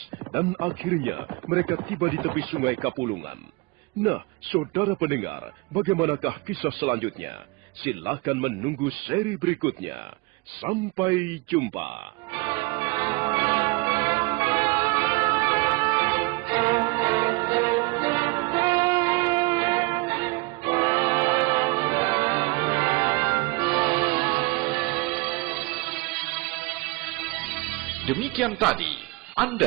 dan akhirnya mereka tiba di tepi sungai Kapulungan. Nah, saudara pendengar, bagaimanakah kisah selanjutnya? Silakan menunggu seri berikutnya. Sampai jumpa. Demikian tadi,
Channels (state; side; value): quieter; left; 25.5 dB